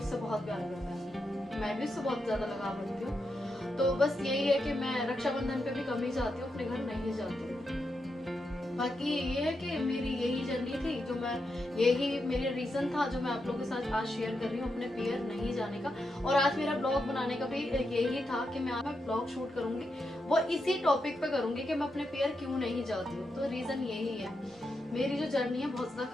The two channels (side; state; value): both; normal; correlation 0.85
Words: बहुत प्यार करता है, मैं भी उससे बहुत ज्यादा लगाव रखती हूँ। तो बस यही है कि मैं रक्षाबंधन पे भी कम ही जाती हूँ, अपने घर नहीं जाती हूँ। बाकी ये है कि मेरी यही जर्नी थी, जो मैं यही मेरा रीजन था जो मैं आप लोगों के साथ आज शेयर कर रही हूँ अपने पियर नहीं जाने का। और आज मेरा ब्लॉग बनाने का भी यही था कि मैं ब्लॉग शूट करूंगी, वो इसी टॉपिक पे करूंगी कि मैं अपने पियर क्यों नहीं जाती हूँ। तो रीजन यही है, मेरी जो जर्नी है बहुत ज्यादा